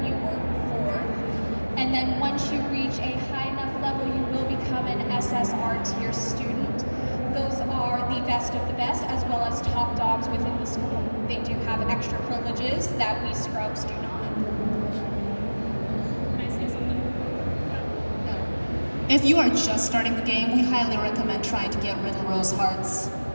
you were before. And then once you reach a high enough level, you will become an SSR tier student. Those are the best of the best, as well as top dogs within the school. They do have extra privileges that we scrubs do not. Can I say something? If you are just starting the game, we highly recommend trying to get Riddle Rose Hearts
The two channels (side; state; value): both; inverted; correlation -1.00